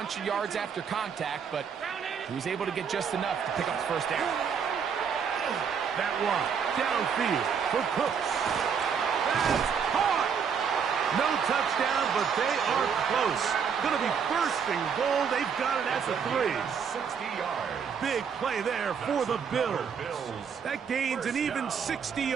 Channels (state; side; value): quieter; left; 6.8 dB